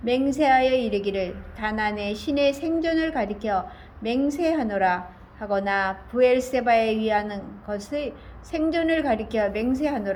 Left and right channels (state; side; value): identical; both; correlation 1.00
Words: 맹세하여 이르기를 다난의 신의 생존을 가리켜 맹세하노라 하거나 부엘세바에 위하는 것의 생존을 가리켜